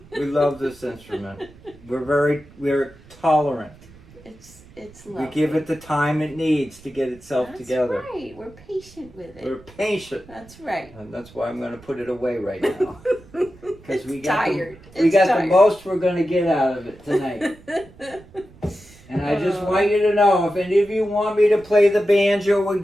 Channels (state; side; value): noise; right; rumble, 23 dB below the sound